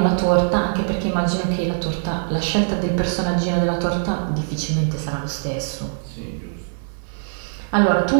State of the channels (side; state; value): left; silent; digital silence